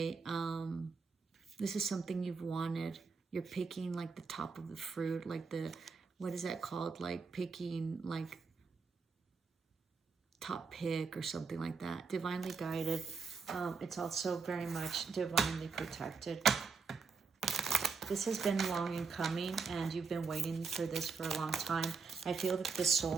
This is something you've wanted. You're picking like the top of the fruit, like the, what is that called? Like picking like top pick or something like that. Divinely guided. It's also very much divinely protected. This has been long in coming, and you've been waiting for this for a long time. I feel that the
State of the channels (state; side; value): quieter; left; 5.0 dB